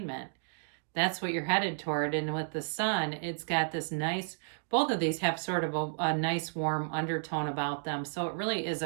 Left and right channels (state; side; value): silent; left; digital silence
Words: That's what you're headed toward. And with the Sun, it's got this nice, both of these have sort of a nice warm undertone about them. So it really is